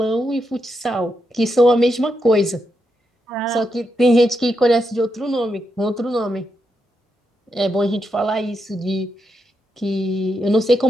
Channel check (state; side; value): normal; both; correlation 0.83